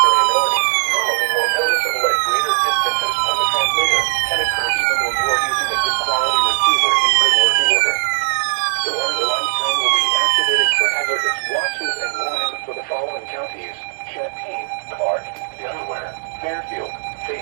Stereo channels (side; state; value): left; silent; 67 dB below the other